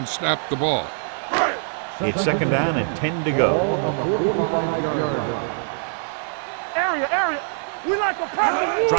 snapped the ball. It's 2nd down and 10 to go. Ball on the 45-yard line. Area. We like a pass.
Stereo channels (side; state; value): left; silent; digital silence